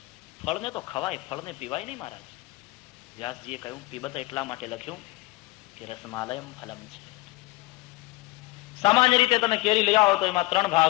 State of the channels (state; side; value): quieter; right; 21.3 dB